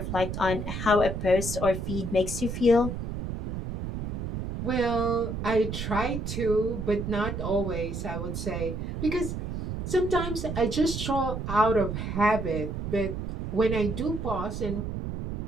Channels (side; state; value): right; noise; rumble, 5 dB below the sound